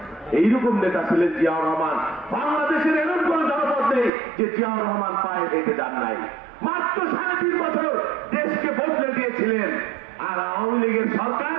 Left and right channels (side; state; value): left; drops out; at 4.1 s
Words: এইরকম নেতা ছিলেন জিয়াউর রহমান। বাংলাদেশের এরকম কোন জনপদ নেই যে জিয়াউর রহমান পায়ে হেঁটে যান নাই। মাত্র 3.5 বছর দেশকে বদলে দিয়েছিলেন। আর আওয়ামী লীগের সরকার